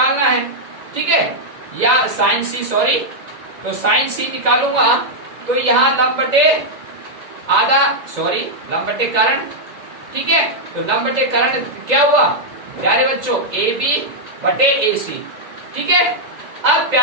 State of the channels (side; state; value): left; late; 2.0 ms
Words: है। ठीक है, या साइन सी, सॉरी, तो साइन सी निकालूंगा तो यहाँ लंब बटे आधा, सॉरी लंब बटे कर्ण। ठीक है, तो लंब बटे कर्ण क्या हुआ प्यारे बच्चों, ए बी बटे ए सी। ठीक है, अब